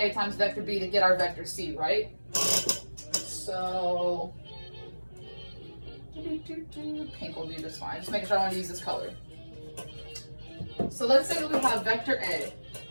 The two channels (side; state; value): both; inverted; correlation -1.00